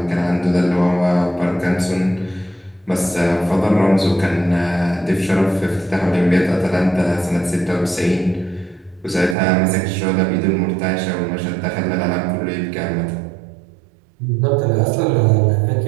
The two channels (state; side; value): drops out; left; at 9.3 s